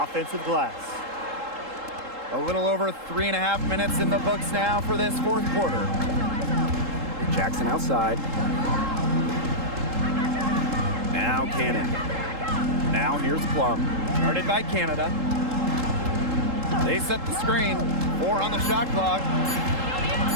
glass. A little over 3.5 minutes in the books now for this fourth quarter. Jackson outside. Now Cannon. Now here's Plum. Guarded by Canada. They set the screen. 4 on the shot clock.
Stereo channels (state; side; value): late; left; 3.7 ms